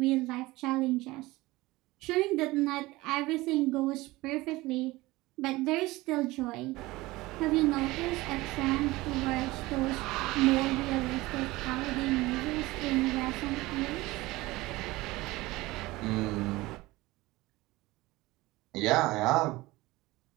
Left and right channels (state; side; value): quieter; left; 20.0 dB